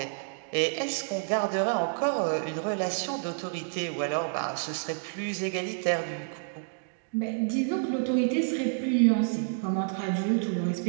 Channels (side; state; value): left; silent; digital silence